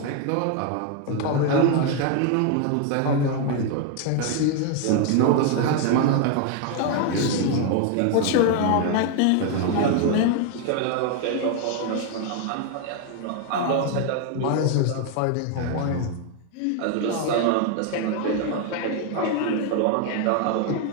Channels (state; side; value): different; both; correlation 0.01